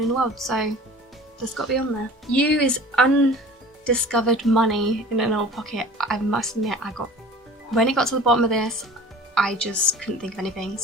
in the world. So that's got to be on there. U is undiscovered money in an old pocket. I must admit, when it got to the bottom of this, I just couldn't think of anything.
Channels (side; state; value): both; normal; correlation 0.43